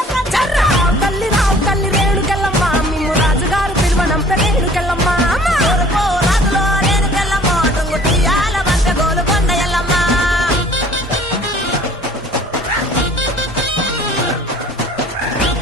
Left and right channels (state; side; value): normal; both; correlation 0.52